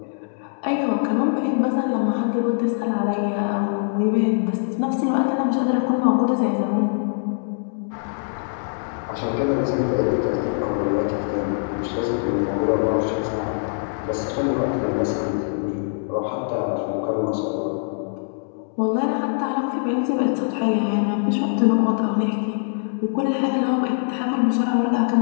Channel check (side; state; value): right; silent; digital silence